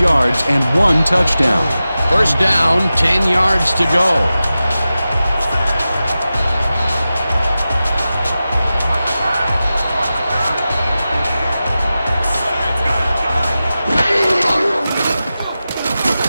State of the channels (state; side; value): inverted; both; correlation -0.94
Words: yards and 1 touchdown. First down, 10 yards to go.